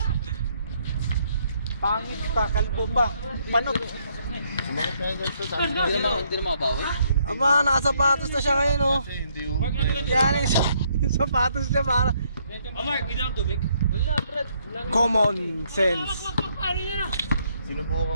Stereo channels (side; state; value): both; inverted; correlation -0.71